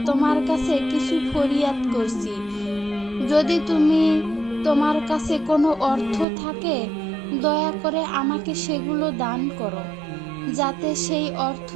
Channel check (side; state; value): left; drops out; at 6.2 s